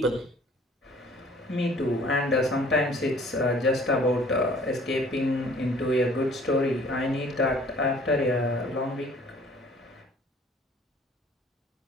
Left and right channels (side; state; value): both; normal; correlation 0.54